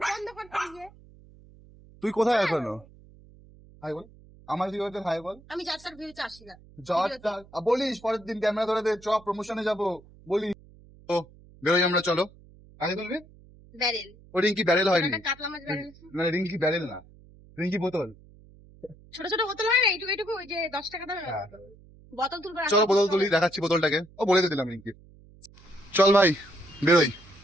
দিয়ে। তুই কোথায় এখনো? হাই বল, আমার কি হচ্ছে হাই বল। আমি যাত্রার ভিউতে আসি না। বলিস পরের দিন ক্যামেরা ধরে দে, চ প্রমোশনে যাবো বলি। তো বেরোই আমরা, চলো। আগে বলবি ব্যারেল। ও রিঙ্কি ব্যারেল হয়নি, একটা কাতলা মাছ ব্যারেল। মানে রিঙ্কি ব্যারেল না, রিঙ্কি বোতল। ছোট ছোট বোতল হয় না, এইটুকু ওই যে 10 টাকা দামের হ্যাঁ। বোতল তুলবো। চলো বোতল তুলি, দেখাচ্ছি বোতলটাকে। ও বলে দিলাম রিঙ্কি। চল ভাই বেরোই।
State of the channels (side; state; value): right; noise; hum, 24 dB below the sound